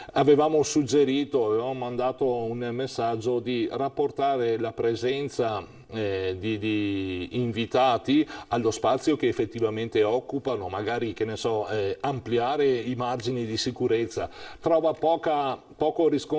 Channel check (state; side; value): identical; both; correlation 1.00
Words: Avevamo mandato un messaggio di rapportare la presenza di invitati allo spazio che effettivamente occupano, magari, che ne so, ampliare i margini di sicurezza. Trova poco